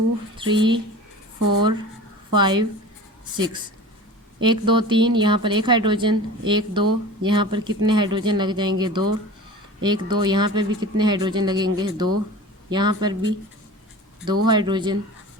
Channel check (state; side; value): normal; both; correlation 0.37